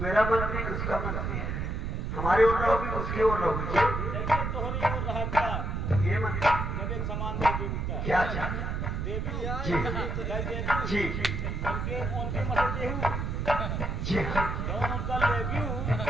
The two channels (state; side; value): noise; right; rumble, 2 dB below the sound